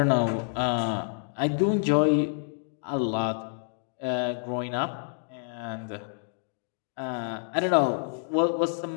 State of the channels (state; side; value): silent; right; digital silence